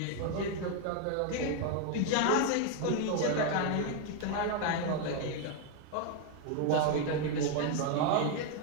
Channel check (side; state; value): both; different; correlation 0.01